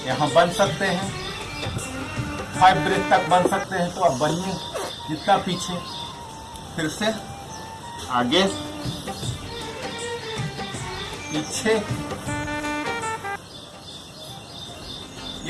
यहाँ बन सकते हैं, 5 ब्रेथ तक बन सकते हैं, तो अब बनिए जितना पीछे। फिर से आगे पीछे।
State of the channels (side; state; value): both; identical; correlation 1.00